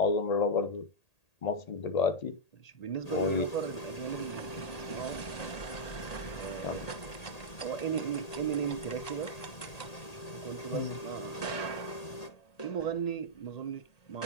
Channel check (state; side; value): late; right; 1.8 ms